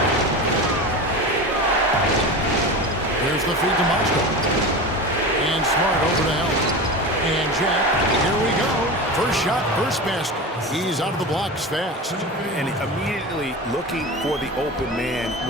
Here's the feed to Mozgov. And Smart over to help. And Jack, here we go. First shot, first basket. He's out of the blocks fast. And immediately looking for the open man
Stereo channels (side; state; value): both; normal; correlation 0.28